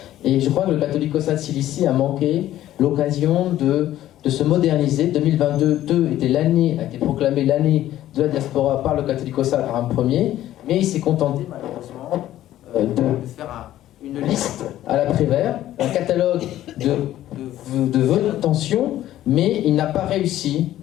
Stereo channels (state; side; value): quieter; right; 13.3 dB